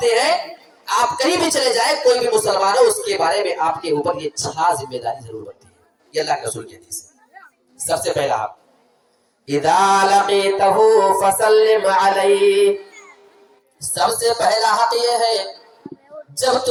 ہیں، آپ کہیں بھی چلے جائیں کوئی بھی مسلمان ہو اس کے بارے میں آپ کے اوپر یہ 6 ذمہ داری ضرور بنتی ہے، یہ اللہ کے رسول کی حدیث ہے۔ سب سے پہلا حق اذا لقیتہ فسلم علیہ، سب سے پہلا حق یہ ہے جب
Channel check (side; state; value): both; identical; correlation 1.00